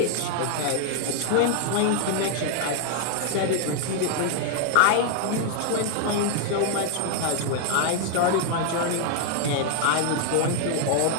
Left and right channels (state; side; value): different; both; correlation 0.00